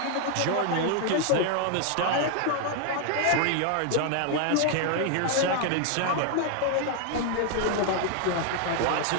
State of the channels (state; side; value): different; both; correlation 0.00